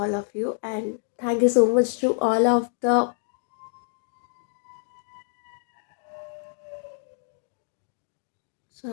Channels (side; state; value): right; silent; digital silence